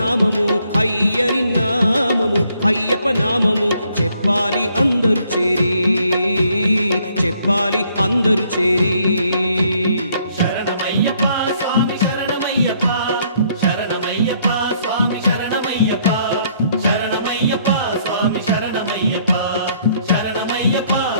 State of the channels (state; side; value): inverted; both; correlation -0.67